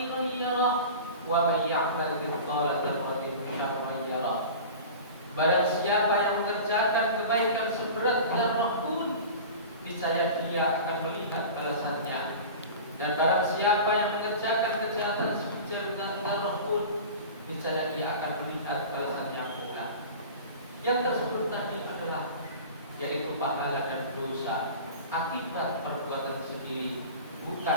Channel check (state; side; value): inverted; both; correlation -0.36